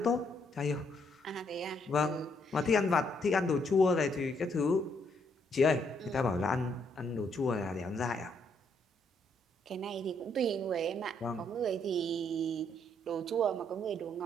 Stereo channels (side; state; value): both; normal; correlation 0.72